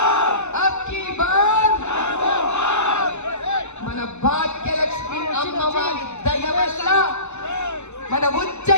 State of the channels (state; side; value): late; right; 0.83 ms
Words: అబ్కి బార్ మన భాగ్యలక్ష్మి అమ్మవారి దయ వల్ల, మన